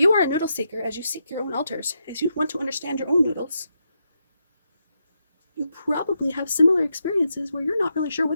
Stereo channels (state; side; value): inverted; both; correlation -0.83